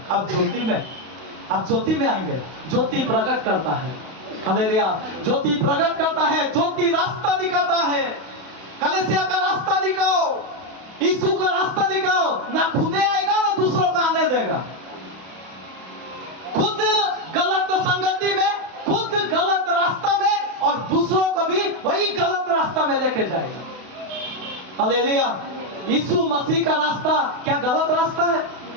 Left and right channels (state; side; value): late; left; 32 ms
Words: अब ज्योति में, आप ज्योति में आएंगे। ज्योति प्रकट करता है। हालेलुया। ज्योति प्रकट करता है, ज्योति रास्ता दिखाता है। कलीसिया का रास्ता दिखाओ, यीशु का रास्ता दिखाओ। ना खुदे आएगा ना दूसरों को आने देगा। खुद गलत संगति में, खुद गलत रास्ता में, और दूसरों को भी वही गलत रास्ता में लेके जाएगा। हालेलुया। यीशु मसीह का रास्ता क्या गलत रास्ता है?